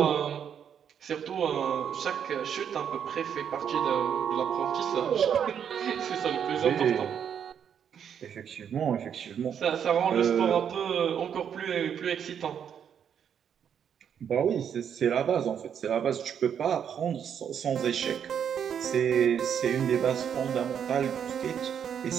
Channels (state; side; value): quieter; left; 8.3 dB